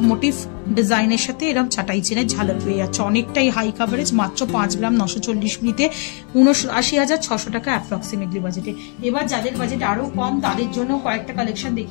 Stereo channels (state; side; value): quieter; right; 39.3 dB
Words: মোটিভ ডিজাইনের সাথে এরকম চাটাই চেনের ঝালর পেয়ে যাচ্ছে। অনেকটাই হাই কাভারেজ, মাত্র 5 গ্রাম 940 মিলিতে 79,600 টাকা অ্যাপ্রক্সিমেটলি বাজেটে। এবার যাদের বাজেট আরো কম তাদের জন্য কয়েকটা কালেকশন